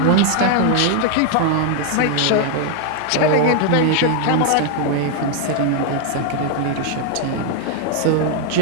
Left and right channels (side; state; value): both; different; correlation 0.00